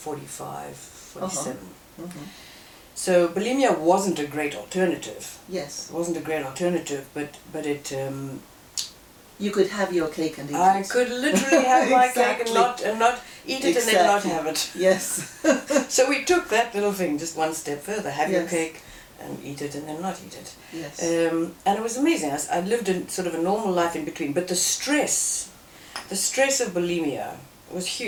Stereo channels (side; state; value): both; identical; correlation 1.00